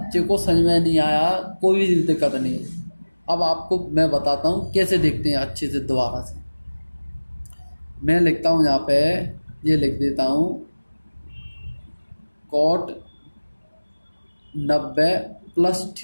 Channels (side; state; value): both; inverted; correlation -1.00